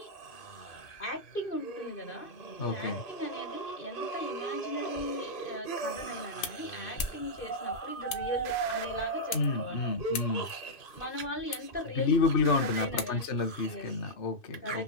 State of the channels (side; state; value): right; late; 2.6 ms